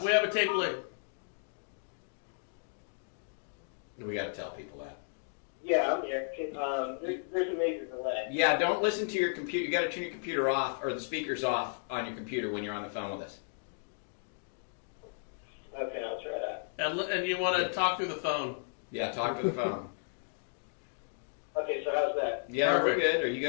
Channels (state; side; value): silent; right; digital silence